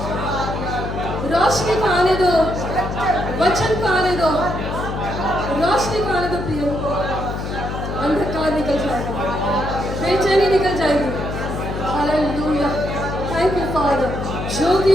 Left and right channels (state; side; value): noise; left; hum, 5 dB below the sound